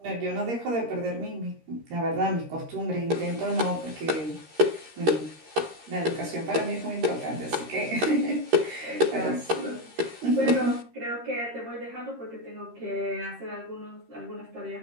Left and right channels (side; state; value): left; late; 13 ms